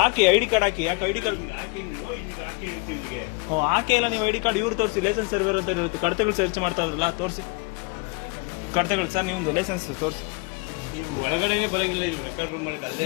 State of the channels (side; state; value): right; quieter; 28.0 dB